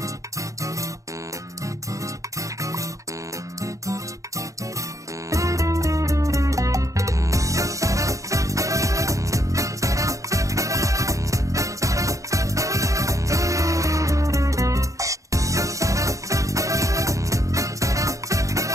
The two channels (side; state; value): left; late; 0.16 ms